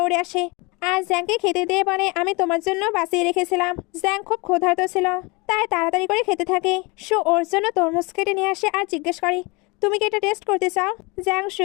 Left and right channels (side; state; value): right; quieter; 27.2 dB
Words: আসে আর জ্যাংকে খেতে দিয়ে বলে, আমি তোমার জন্য বাঁচিয়ে রেখেছিলাম। জ্যাং খুব ক্ষুধার্ত ছিল, তাই তাড়াতাড়ি করে খেতে থাকে। শু ওর জন্য তরমুজ কেটে নিয়ে আসে আর জিজ্ঞেস করে, তুমি কি এটা টেস্ট করতে চাও? জ্যাং